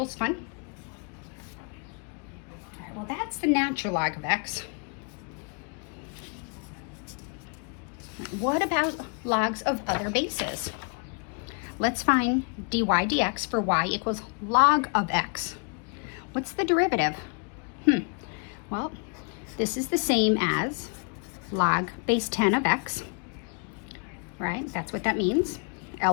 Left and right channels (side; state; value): right; quieter; 39.6 dB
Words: fun? All right, well, that's the natural log of x. What about logs of other bases? Let's find dy dx for y equals log of x. What's the derivative? Well, this is the same as log base 10 of x, right? That's what that means.